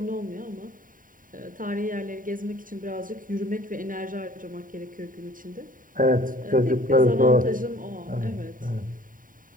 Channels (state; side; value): late; left; 0.39 ms